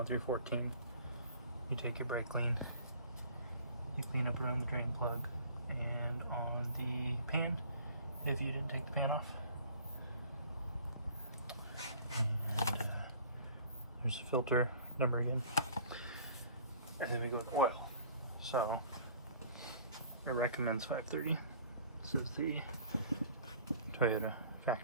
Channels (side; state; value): both; inverted; correlation -0.50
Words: through 14. You take your brake clean, you clean up around the drain plug and on the pan, if you didn't take the pan off. And there's a filter number again. And then we go to oil. So it recommends 530. This is the Toyota